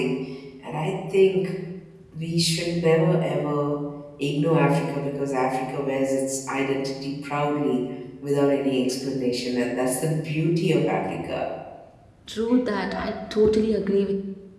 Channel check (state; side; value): identical; both; correlation 1.00